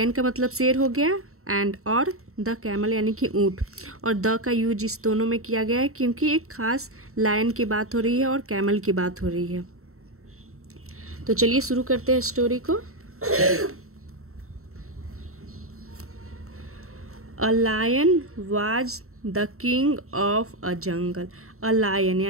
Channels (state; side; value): late; left; 0.63 ms